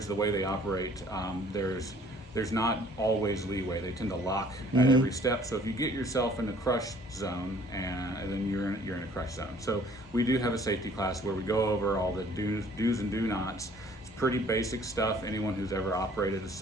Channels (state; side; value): normal; both; correlation 0.56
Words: the way they operate, there's not always leeway. They tend to lock at every step. So if you get yourself in a crush zone, and then you're in a crush zone. So we do have a safety class where we go over all the do's and do nots. It's pretty basic stuff. Anyone who's ever operated a